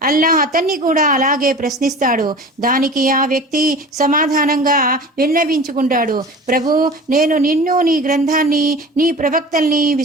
అల్లాహ్ అతన్ని కూడా అలాగే ప్రశ్నిస్తాడు. దానికి ఆ వ్యక్తి సమాధానంగా విన్నవించుకుంటాడు, ప్రభు, నేను నిన్ను, నీ గ్రంథాన్ని, నీ ప్రవక్తల్ని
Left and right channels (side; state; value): both; normal; correlation 0.38